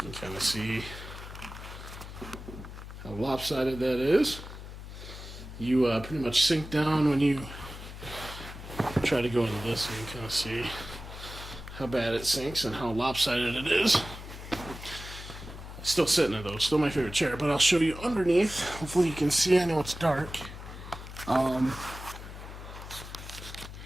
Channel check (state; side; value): noise; left; hum, 12 dB below the sound